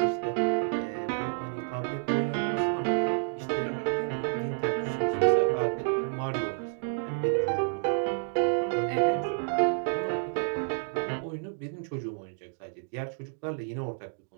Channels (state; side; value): silent; left; digital silence